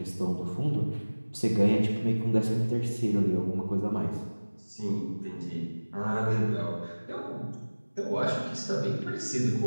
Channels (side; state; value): both; inverted; correlation -1.00